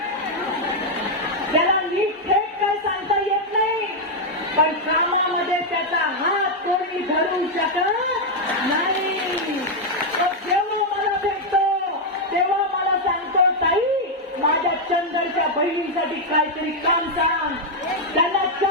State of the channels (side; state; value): both; normal; correlation -0.01